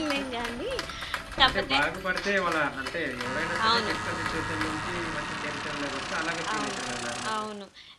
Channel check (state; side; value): identical; both; correlation 1.00